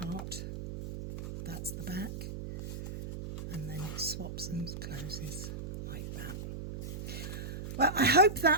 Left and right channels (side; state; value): right; noise; hum, 7 dB below the sound